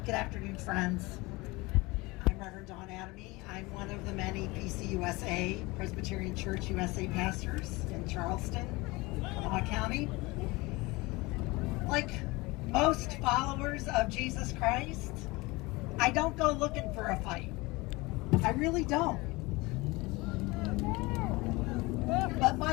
Good afternoon, friends. I'm Reverend Dawn Adamy. I'm one of the many PCUSA, Presbyterian Church USA pastors in Charleston, Kanawha County. Like most followers of Jesus Christ, I don't go looking for a fight. I really don't. But my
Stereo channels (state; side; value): quieter; right; 23.2 dB